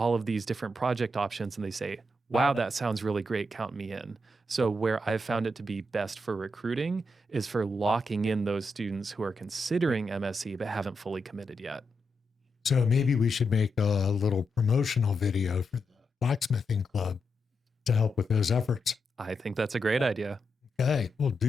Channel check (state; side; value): normal; both; correlation 0.84